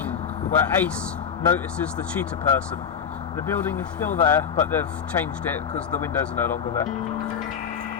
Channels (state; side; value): quieter; right; 7.5 dB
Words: where Ace notices the cheetah person. The building is still there, but they've changed it because the windows are no longer there.